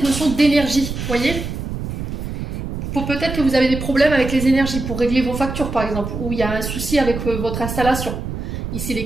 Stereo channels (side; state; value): right; noise; rumble, 5 dB below the sound